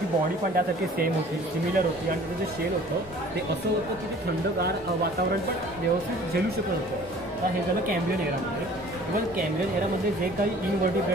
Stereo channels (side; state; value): both; normal; correlation 0.49